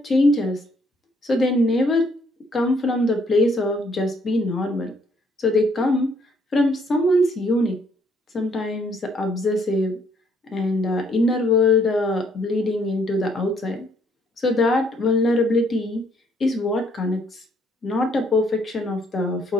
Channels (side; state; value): both; normal; correlation 0.67